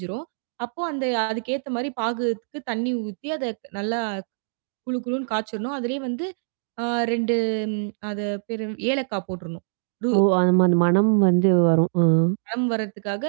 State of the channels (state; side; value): silent; left; digital silence